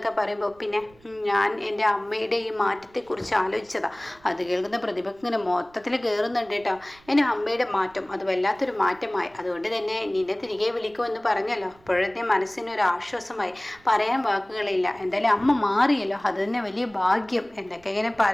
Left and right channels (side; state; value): right; noise; rumble, 28 dB below the sound